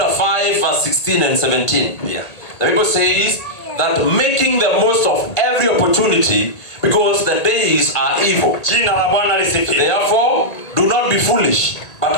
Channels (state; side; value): late; right; 1.8 ms